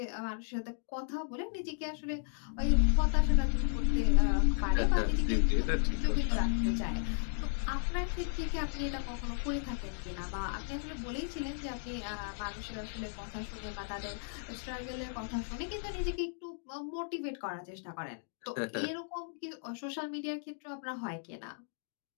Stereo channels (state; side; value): silent; right; digital silence